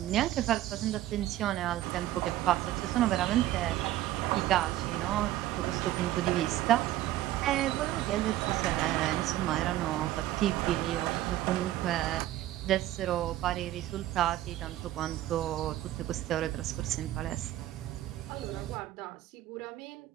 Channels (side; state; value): left; quieter; 14.3 dB